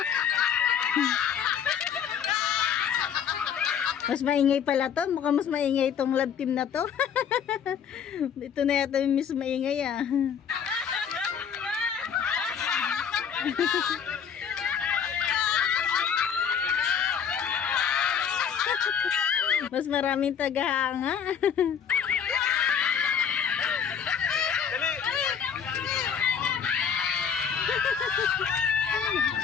Mas maingay pala to. Mukhang mas maingay itong love team na to. Ito na yata yung mas maingay ah. Mas maraming tagahanga. Dali.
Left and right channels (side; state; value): right; quieter; 7.7 dB